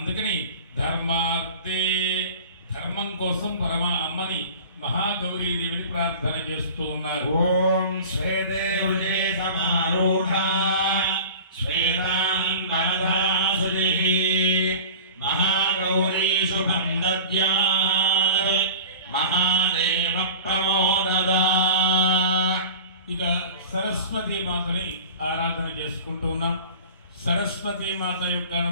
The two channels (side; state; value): both; inverted; correlation -0.38